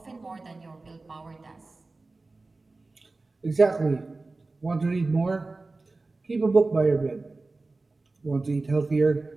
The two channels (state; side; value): quieter; left; 3.4 dB